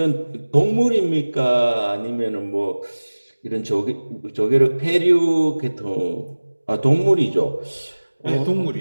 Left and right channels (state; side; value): inverted; both; correlation -1.00